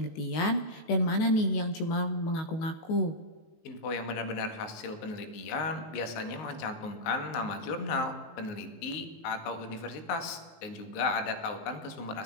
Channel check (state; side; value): late; right; 19 ms